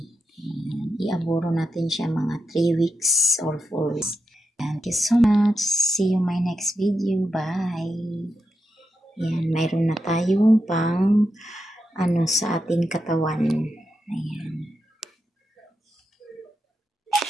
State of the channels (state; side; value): normal; both; correlation 0.87